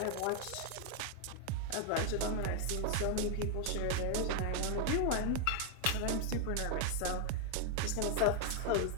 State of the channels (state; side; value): different; both; correlation 0.00